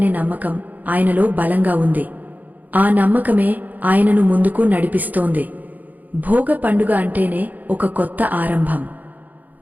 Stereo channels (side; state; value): left; late; 0.081 ms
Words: నమ్మకం ఆయనలో బలంగా ఉంది. ఆ నమ్మకమే ఆయనను ముందుకు నడిపిస్తోంది. భోగ పండుగ అంటేనే ఒక కొత్త